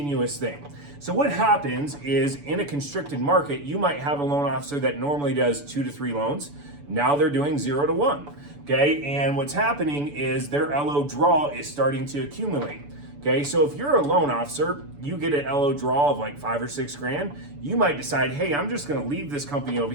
thing. So what happens is in a constricted market, you might have a loan officer that normally does 2 to 3 loans. Now they're doing 0 to 1. Okay, and what's happening is their LO draw is starting to accumulate. Okay, so if you're a loan officer, you get an LO draw of like 5 or 6 grand, you might decide, hey, I'm just gonna leave this company over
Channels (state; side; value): late; left; 6.9 ms